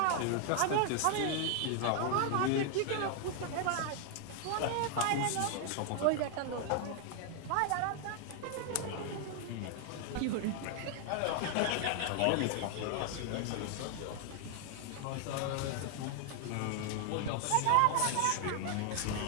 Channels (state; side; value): different; both; correlation 0.00